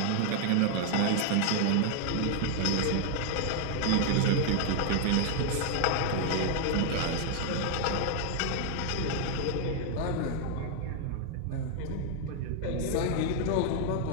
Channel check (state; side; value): different; both; correlation 0.00